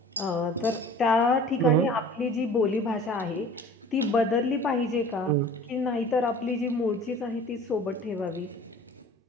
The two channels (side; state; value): both; normal; correlation 0.44